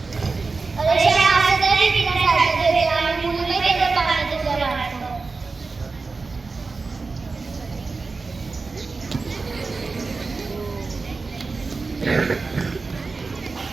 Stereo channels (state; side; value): quieter; left; 4.1 dB